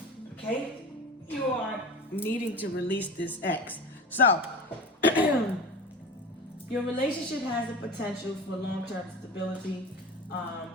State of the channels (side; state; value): both; normal; correlation 0.32